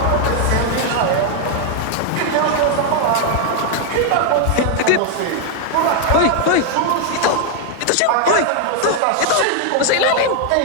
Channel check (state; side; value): different; both; correlation 0.00